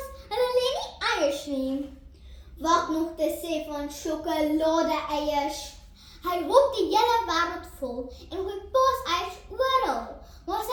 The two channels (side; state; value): both; identical; correlation 1.00